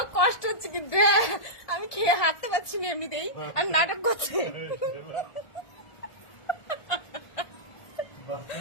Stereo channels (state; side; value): late; right; 1.4 ms